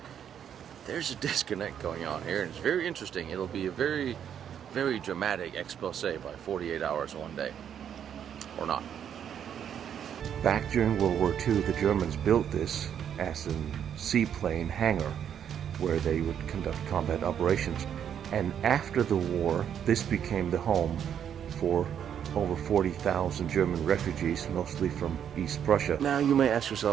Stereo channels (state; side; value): quieter; left; 8.9 dB